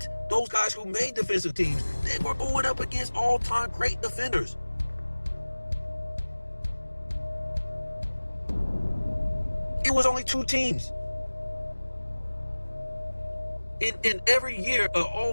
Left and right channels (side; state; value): both; inverted; correlation -1.00